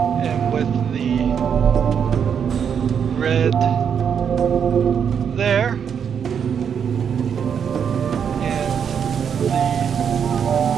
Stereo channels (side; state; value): left; quieter; 7.6 dB